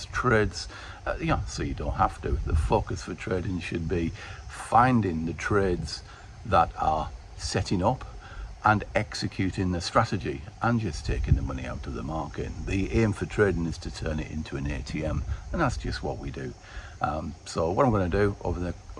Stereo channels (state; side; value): identical; both; correlation 1.00